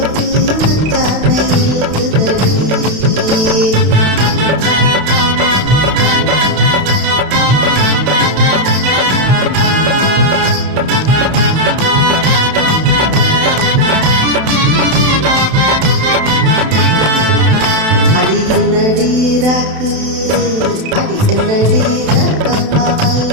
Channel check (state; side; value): late; left; 32 ms